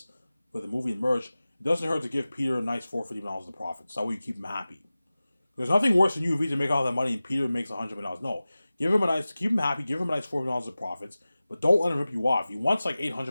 for the movie and merch. It doesn't hurt to give Peter a nice $450 of profits. That way you keep him happy. There's nothing worse than you to make all that money and Peter makes $100 million. No, keep him happy, give him a nice $400 of profits, but don't let him rip you off. If he wants like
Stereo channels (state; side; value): inverted; both; correlation -0.97